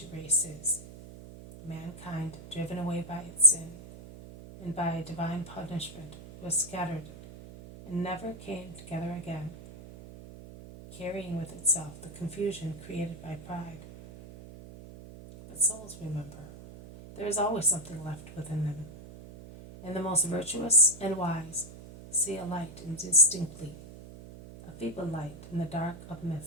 races, mankind driven away by its sin, and by divine punishment was scattered, and never came together again, carrying with itself the confusion created by pride. But souls remember, there is always something left within them, and the most virtuous and wise see a light indistinctly, a feeble light in the dark of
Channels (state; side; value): noise; right; hum, 15 dB below the sound